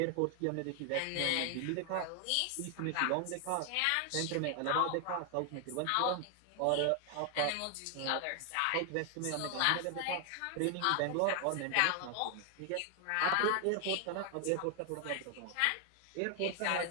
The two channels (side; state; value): both; different; correlation 0.00